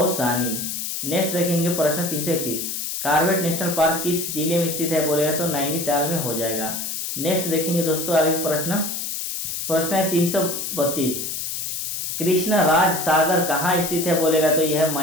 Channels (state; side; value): noise; left; hiss, 4 dB below the sound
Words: नेक्स्ट देखेंगे प्रश्न 331, कॉर्बेट नेशनल पार्क किस जिले में स्थित है? बोलेगा तो नैनीताल में हो जाएगा। नेक्स्ट देखेंगे दोस्तों आगे प्रश्न है 332, कृष्ण राज सागर कहाँ स्थित है? बोलेगा तो यह है